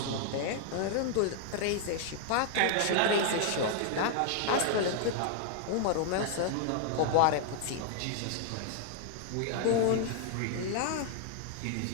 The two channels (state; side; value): different; both; correlation 0.00